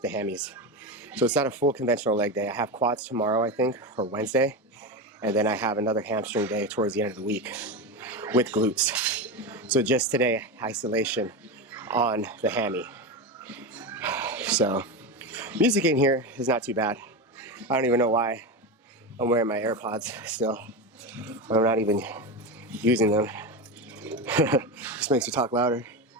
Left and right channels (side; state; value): both; normal; correlation 0.18